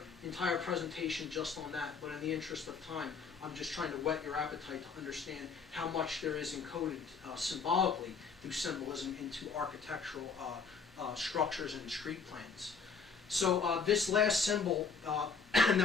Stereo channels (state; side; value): quieter; right; 5.2 dB